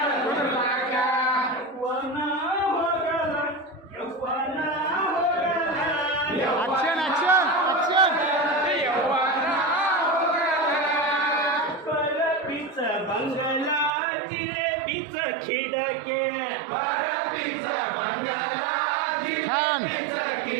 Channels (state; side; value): drops out; left; at 14.0 s